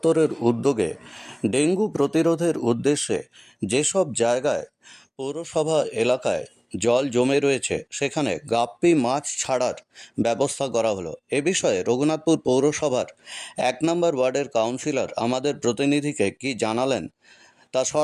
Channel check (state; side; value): identical; both; correlation 1.00